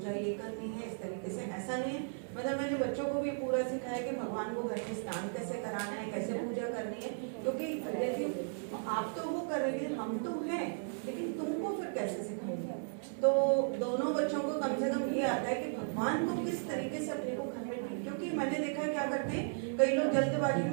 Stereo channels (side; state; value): left; silent; digital silence